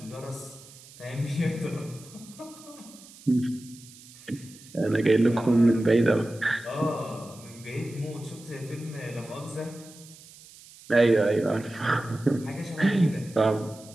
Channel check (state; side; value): noise; right; hiss, 21 dB below the sound